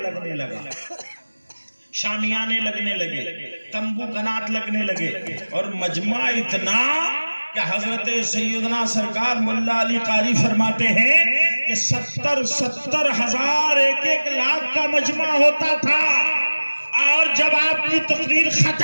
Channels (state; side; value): inverted; both; correlation -1.00